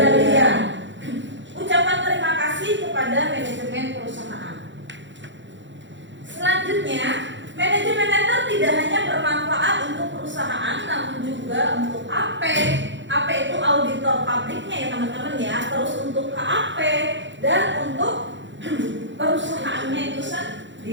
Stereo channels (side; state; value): left; late; 0.54 ms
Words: Ucapan terima kasih kepada manajemen perusahaan. Selanjutnya, manajemen letter tidak hanya bermanfaat untuk perusahaan, namun juga untuk AP. AP itu auditor publiknya ya teman-teman ya. Terus untuk KAP dan untuk perusahaannya itu